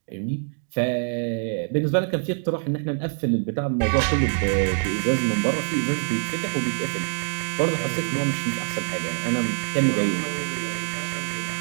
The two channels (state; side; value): silent; left; digital silence